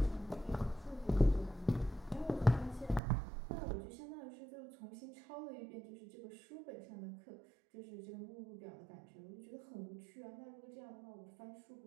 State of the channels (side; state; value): left; drops out; at 3.0 s